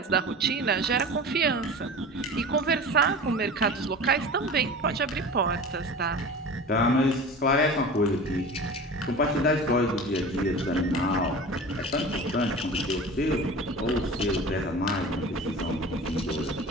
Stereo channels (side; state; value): both; normal; correlation 0.35